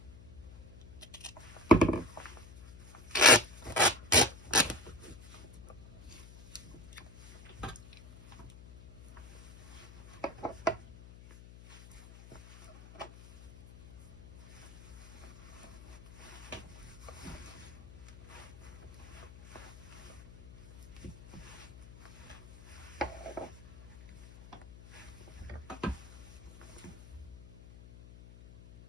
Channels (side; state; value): left; noise; hum, 18 dB below the sound